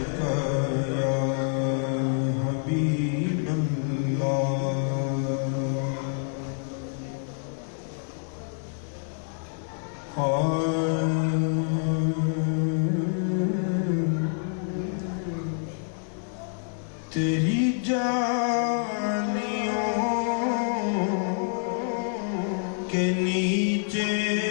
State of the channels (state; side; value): silent; right; 58 dB below the other